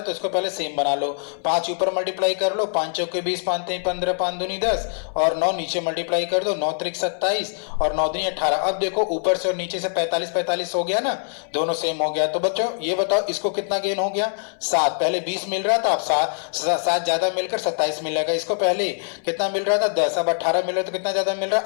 तो इसको पहले सेम बना लो। 5 ऊपर मल्टीप्लाई कर लो, 5 चौके 20, 5 3 15, 5 दूनी 10 और 9 नीचे मल्टीप्लाई कर दो, 9 त्रिक 27 और 9 दूनी 18। अब देखो ऊपर से और नीचे से 45 45 हो गया ना, दोनों सेम हो गया। तो बच्चों ये बताओ इसको कितना गेन हो गया, 7। पहले 20 मिल रहा था, अब 7 ज्यादा मिलकर 27 मिलेगा। इसको पहले कितना मिल रहा था, 10, अब 18 मिल रहा है, तो कितना ज्यादा मिल रहा है,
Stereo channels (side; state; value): right; silent; 61 dB below the other